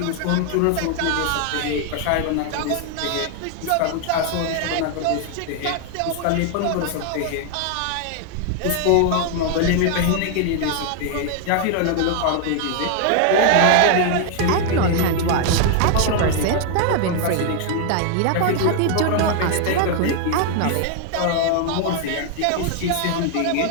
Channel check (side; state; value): both; different; correlation 0.00